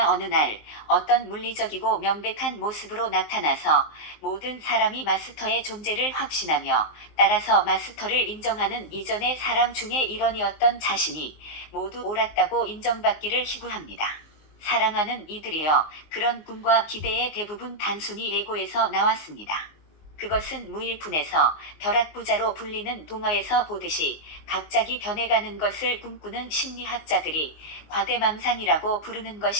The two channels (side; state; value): right; late; 19 ms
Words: 어느 날 어떤 물리적이고 명백한 모습으로 나타나서 모든 사람이 마스터의 존재를 확신하며 따라서 마스터를 인정하는 이전의 사람 중에 일원이었던 자신이 모두 옳았다고 인정받기를 희구합니다. 사랑하는 이들이여, 그런 꿈과 기대의 대부분 단순히 에고에서 나왔습니다. 그것은 무일푼에서 벼락부자로 불리는 동화에서 보듯이 갑자기 변해가는 것을 꿈꾸는 심리학자들이 과대망상이라고 부르는